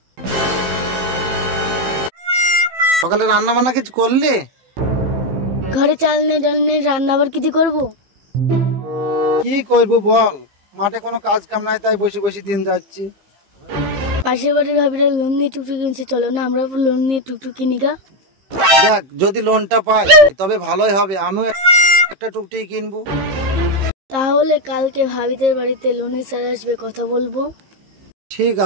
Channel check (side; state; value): left; late; 15 ms